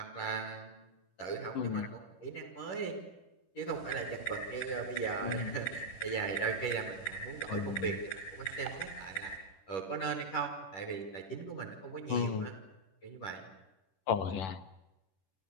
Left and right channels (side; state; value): right; late; 10 ms